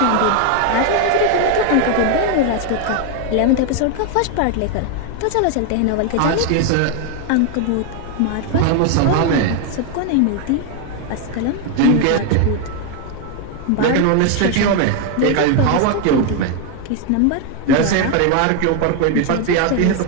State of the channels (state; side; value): different; both; correlation 0.01